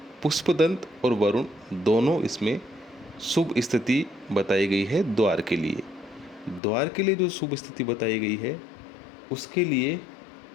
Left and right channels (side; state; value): right; drops out; at 6.6 s